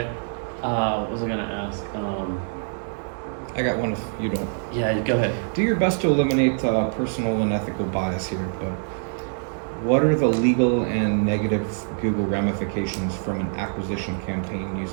what was I gonna ask? I got one if you don't. Yeah, go ahead. Do your best to eliminate personal and ethical bias here, but what are the legal and negative Google ramifications from an acquisition campaign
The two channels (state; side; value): silent; left; digital silence